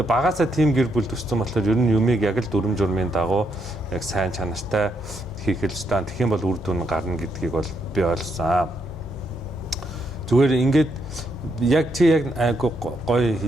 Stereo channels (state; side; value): normal; both; correlation 0.77